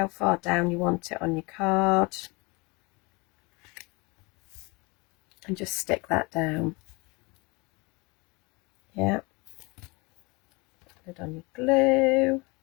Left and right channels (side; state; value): right; quieter; 27.1 dB